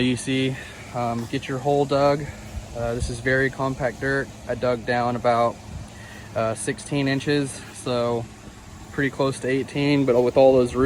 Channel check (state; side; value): identical; both; correlation 1.00